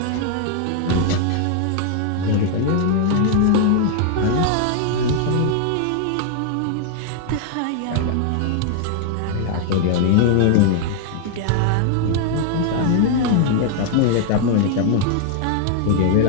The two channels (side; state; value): both; different; correlation 0.00